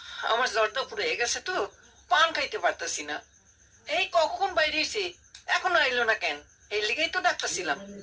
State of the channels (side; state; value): both; identical; correlation 1.00